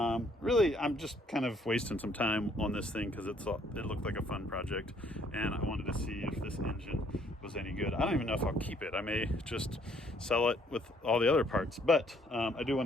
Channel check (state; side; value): normal; both; correlation 0.64